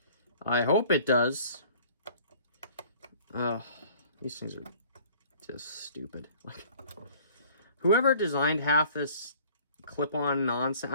I hope it does. These things are just stupid. Like, whoever designed half this clip-on nonsense,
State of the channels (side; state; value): both; inverted; correlation -0.51